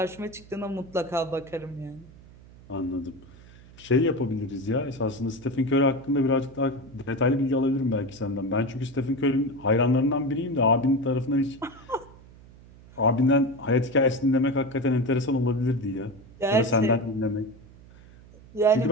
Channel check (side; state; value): right; noise; hum, 22 dB below the sound